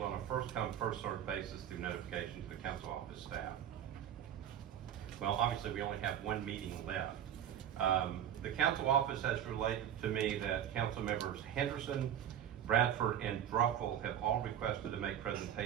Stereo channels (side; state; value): left; quieter; 10.1 dB